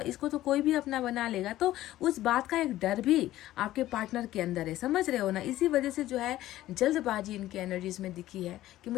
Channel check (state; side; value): quieter; right; 14.7 dB